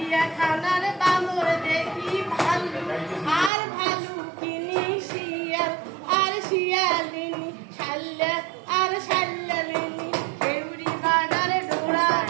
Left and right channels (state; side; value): drops out; left; at 3.5 s